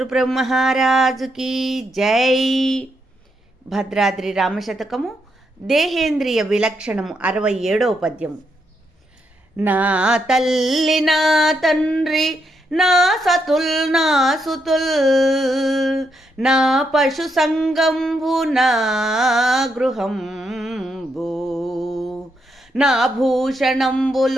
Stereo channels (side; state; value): both; normal; correlation 0.80